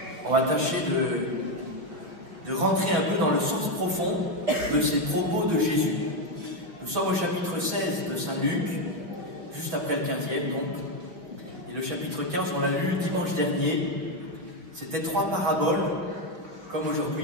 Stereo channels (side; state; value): left; late; 5.6 ms